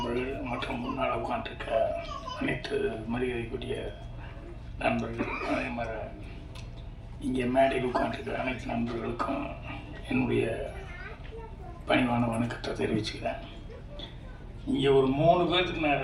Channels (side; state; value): both; identical; correlation 1.00